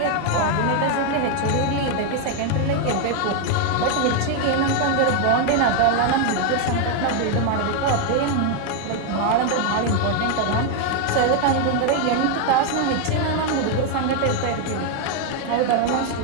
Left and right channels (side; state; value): both; different; correlation 0.01